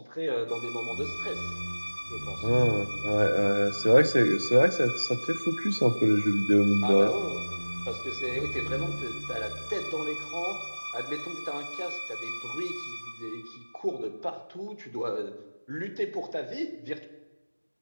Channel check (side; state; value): both; inverted; correlation -1.00